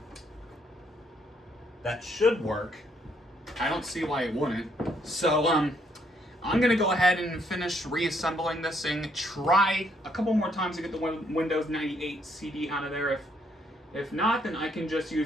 That should work. I don't see why it wouldn't. So, I'm going to go ahead and finish reassembling this thing, try a couple more times to get the Windows 98 CD out of there. If not, then I can just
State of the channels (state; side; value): normal; both; correlation 0.70